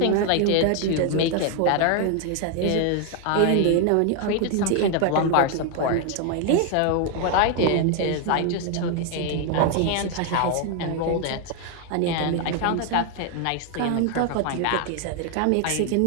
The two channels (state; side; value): different; both; correlation 0.00